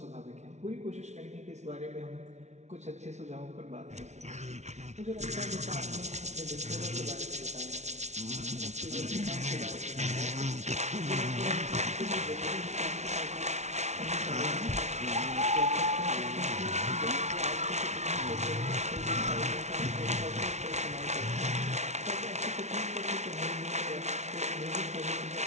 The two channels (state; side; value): late; left; 0.32 ms